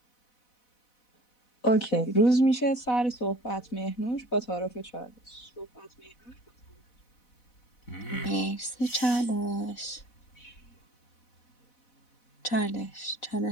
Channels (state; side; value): late; right; 4.1 ms